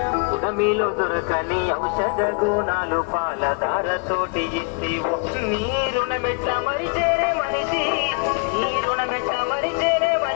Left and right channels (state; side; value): quieter; right; 39.6 dB